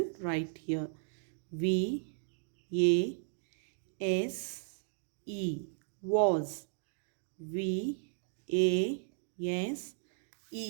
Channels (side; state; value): left; silent; digital silence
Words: write here V A S E, was. V A S